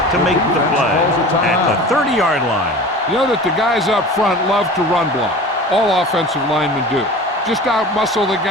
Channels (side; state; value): both; normal; correlation 0.37